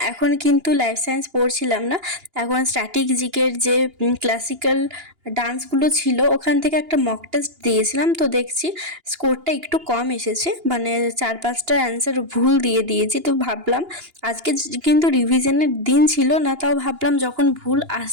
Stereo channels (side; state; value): left; late; 2.9 ms